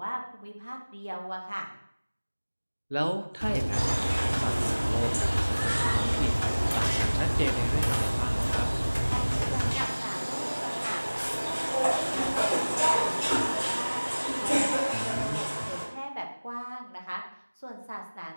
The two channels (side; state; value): both; inverted; correlation -1.00